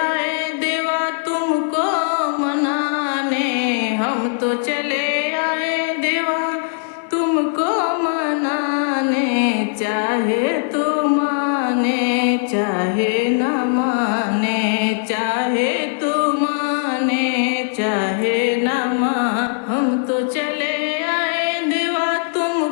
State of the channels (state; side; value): silent; right; digital silence